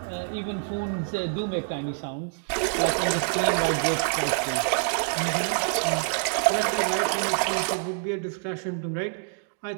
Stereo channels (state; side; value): silent; left; digital silence